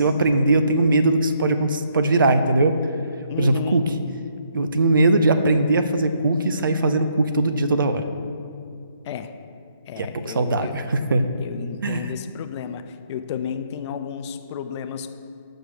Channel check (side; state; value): both; inverted; correlation -0.71